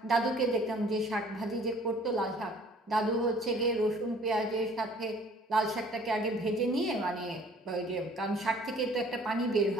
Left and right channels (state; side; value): normal; both; correlation 0.54